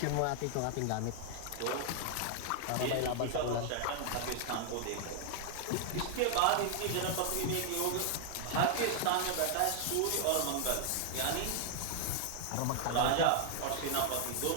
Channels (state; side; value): different; both; correlation 0.00